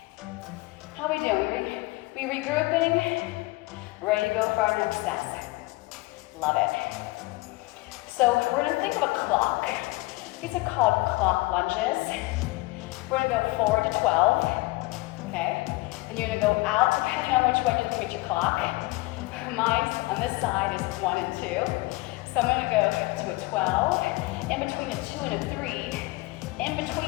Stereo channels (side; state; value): right; quieter; 22.2 dB